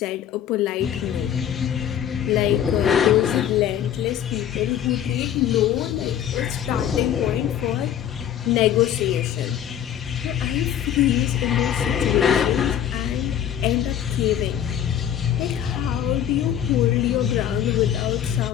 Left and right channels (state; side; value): quieter; right; 10.0 dB